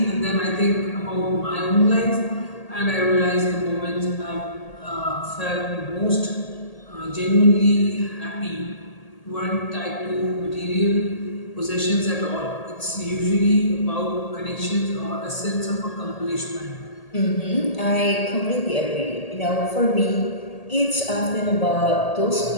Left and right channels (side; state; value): right; late; 1.8 ms